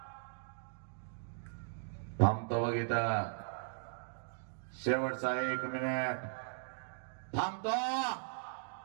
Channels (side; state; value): left; silent; digital silence